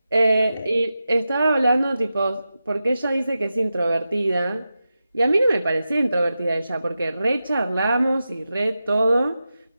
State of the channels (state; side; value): inverted; both; correlation -0.91